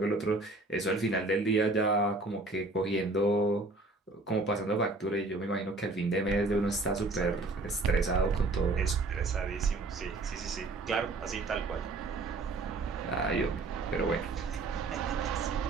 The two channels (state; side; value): quieter; left; 3.2 dB